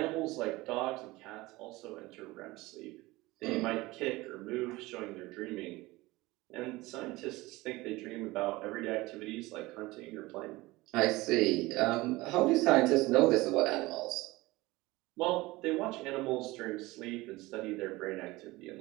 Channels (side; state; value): left; quieter; 20.5 dB